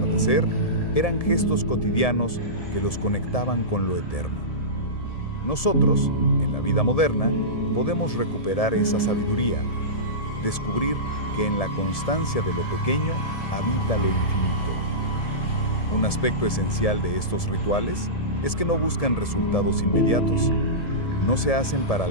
eran gestos cotidianos que los conectaban con lo eterno. Nosotros, en la vida moderna, podemos recuperar esa sabiduría, descubrir que en la constancia de lo pequeño habita lo infinito. Un aspecto esencial de estos rituales es que no buscan resultados inmediatos. No se hacen para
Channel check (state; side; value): late; right; 1.7 ms